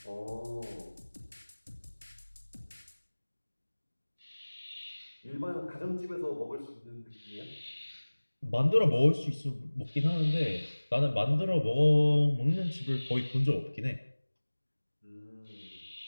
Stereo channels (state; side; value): inverted; both; correlation -1.00